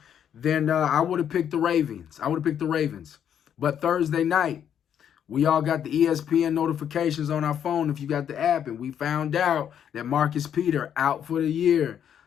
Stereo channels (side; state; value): right; quieter; 9.0 dB